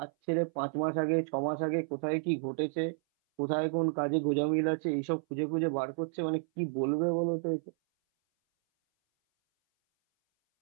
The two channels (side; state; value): left; silent; 57 dB below the other